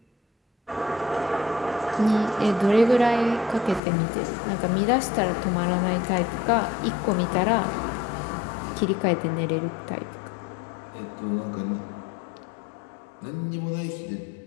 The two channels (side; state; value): right; drops out; at 3.8 s